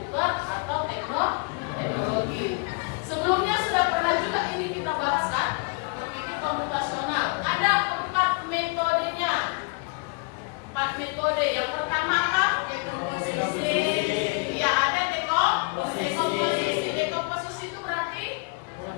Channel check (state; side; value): quieter; right; 30.3 dB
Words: atau teknologi. Sebelumnya sudah pernah juga ini kita bahas kan? Berpikir komputasional. Ada 4 metodenya. 4 metode. Yang pertama apa? Dekomposisi. Ya, ada dekomposisi. Dekomposisi itu berarti